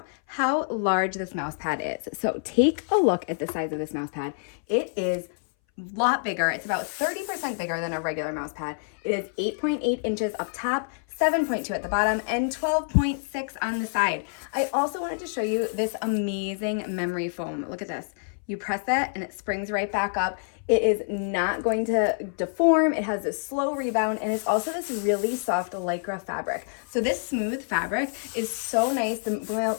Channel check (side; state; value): right; silent; 60 dB below the other